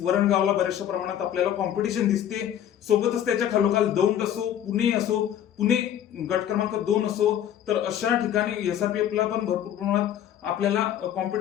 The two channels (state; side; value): quieter; right; 10.5 dB